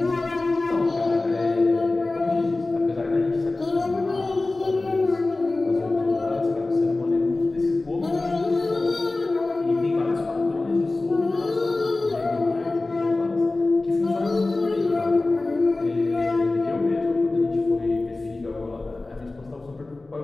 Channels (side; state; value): right; quieter; 3.1 dB